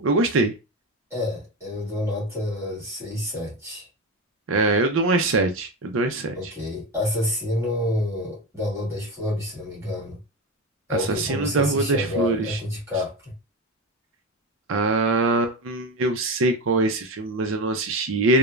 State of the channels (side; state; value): both; normal; correlation 0.20